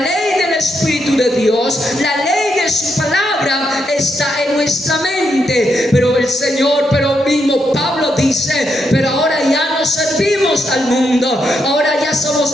del Espíritu de Dios, la ley de su palabra está en nuestra mente. Pero el Señor, pero mismo Pablo dice, pero ahora ya no servimos al mundo, ahora ya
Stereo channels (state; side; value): normal; both; correlation 0.80